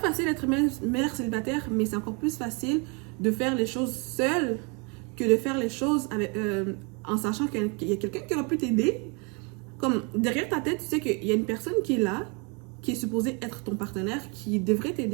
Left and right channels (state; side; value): quieter; left; 32.6 dB